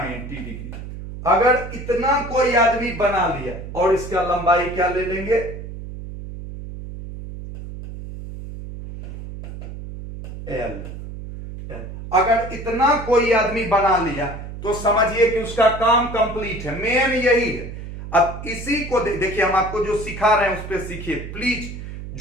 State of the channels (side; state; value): right; noise; hum, 10 dB below the sound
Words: degree. अगर इतना कोई आदमी बना लिया और इसका लंबाई क्या ले लेंगे? L। अगर इतना कोई आदमी बना लिया तो समझिए कि उसका काम कंप्लीट है। मेन यही है। अब इसी को देखिए, हम आपको जो सिखा रहे हैं उस पर सीखिए प्लीज।